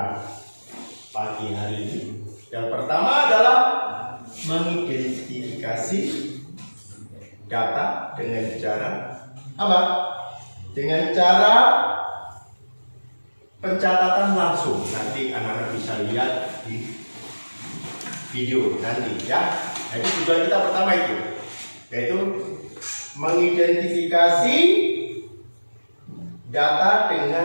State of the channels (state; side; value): inverted; both; correlation -1.00